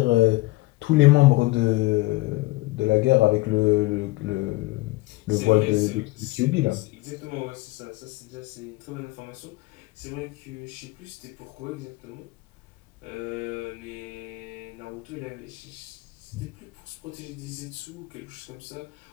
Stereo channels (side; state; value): right; quieter; 20.6 dB